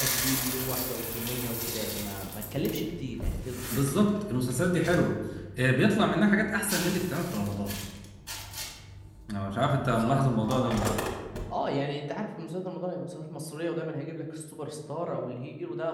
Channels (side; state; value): both; identical; correlation 1.00